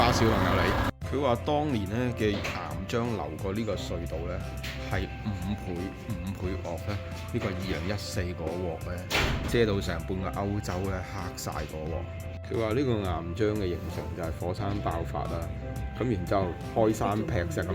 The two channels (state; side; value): identical; both; correlation 1.00